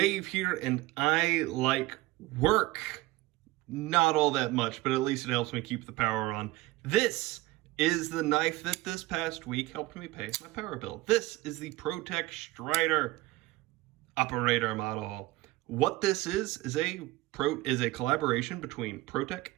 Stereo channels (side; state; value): left; quieter; 18.7 dB